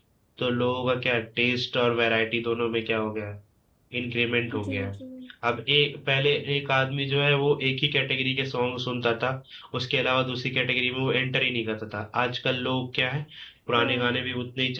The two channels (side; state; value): both; identical; correlation 1.00